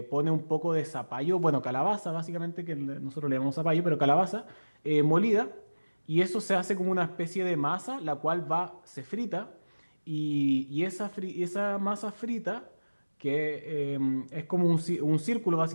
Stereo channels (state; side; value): inverted; both; correlation -1.00